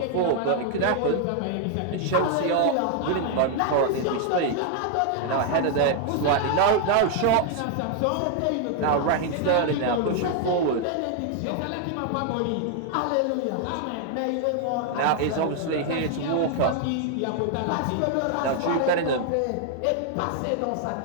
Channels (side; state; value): both; different; correlation 0.00